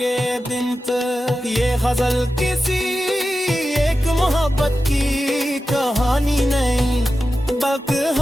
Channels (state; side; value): normal; both; correlation 0.92